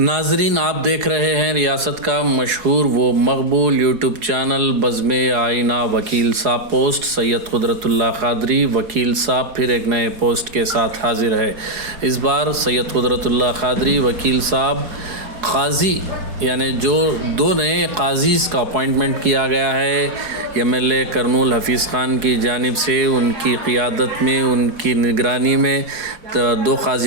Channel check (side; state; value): left; late; 4.7 ms